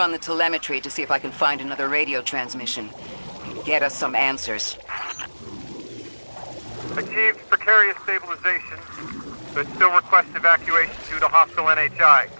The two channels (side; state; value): both; inverted; correlation -1.00